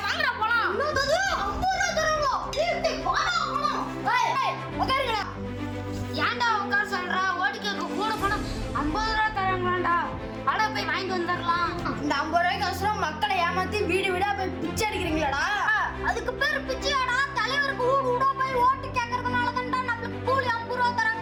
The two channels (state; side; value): identical; both; correlation 1.00